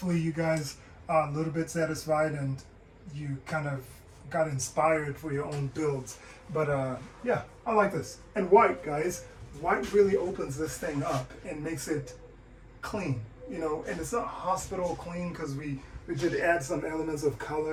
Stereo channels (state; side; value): identical; both; correlation 1.00